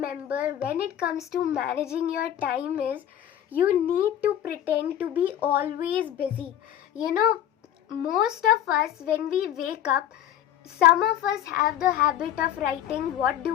when it comes to managing your time is you need to pretend to be always busy. Most of us, when we wake up, some of us have the habit of writing what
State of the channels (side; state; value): right; quieter; 11.0 dB